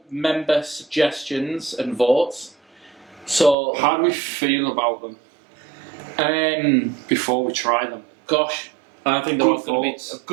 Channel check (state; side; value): drops out; left; at 3.6 s